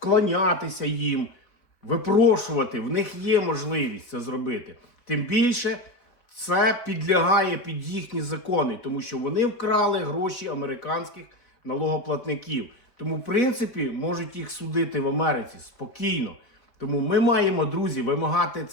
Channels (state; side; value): late; right; 4.1 ms